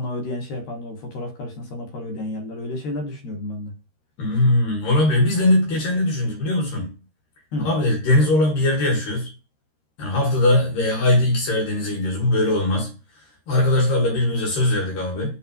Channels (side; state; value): right; late; 13 ms